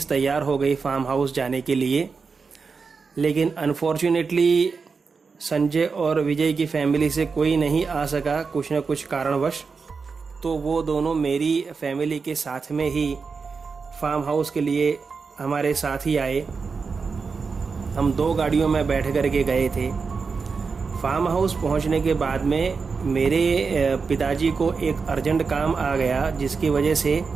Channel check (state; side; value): quieter; left; 5.0 dB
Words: तैयार हो गई फार्म हाउस जाने के लिए। लेकिन अनफॉर्चुनेटली संजय और विजय की फैमिली से कोई नहीं आ सका कुछ न कुछ कारणवश। तो वो दोनों मेरी फैमिली के साथ में ही फार्म हाउस के लिए हमारे साथ ही आए। हम 2 गाड़ियों में बैठ कर के गए थे। फार्म हाउस पहुंचने के बाद में मेरे पिताजी को एक अर्जेंट काम आ गया, जिसकी वजह से